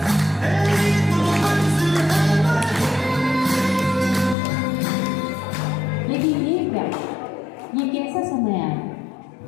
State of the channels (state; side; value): drops out; right; at 4.4 s